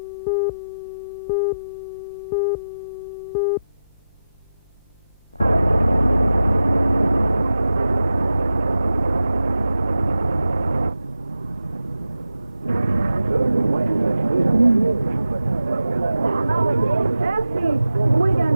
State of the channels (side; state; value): both; inverted; correlation -0.91